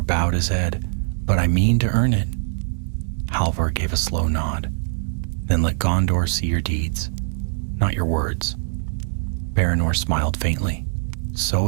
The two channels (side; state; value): left; silent; digital silence